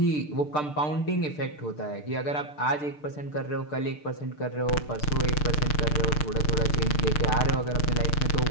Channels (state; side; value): late; right; 6.7 ms